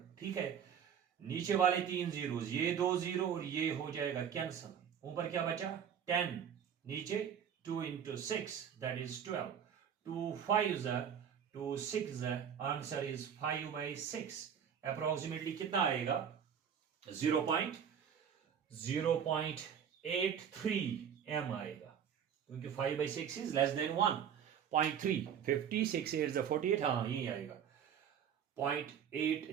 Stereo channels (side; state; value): left; quieter; 8.2 dB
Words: ठीक है। नीचे वाले 3 जीरोस, ये 2 जीरो और ये हो जाएगा कैंसल। ऊपर क्या बचा? 10, नीचे 2 into 6, that is 12। 2 5s are 2 6, answer is 5/6। Approximately कितना आएगा? 0.83 m आएगा, क्योंकि 5/6 इज लेस देन 1.3। 56 8 48, हाँ यही आएगा